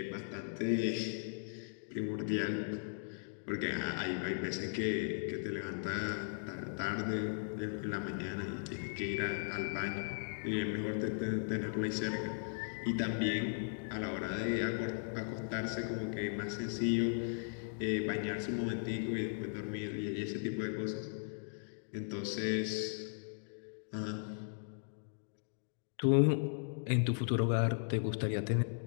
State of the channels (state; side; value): silent; right; digital silence